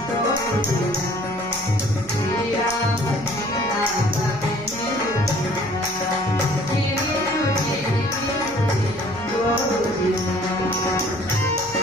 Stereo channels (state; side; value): noise; left; hum, 22 dB below the sound